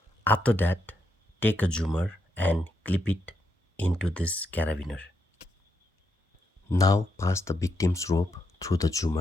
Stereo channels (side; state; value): both; normal; correlation 0.80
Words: After that, take a zoomer and clip it into this carabiner. Now pass the victim's rope through the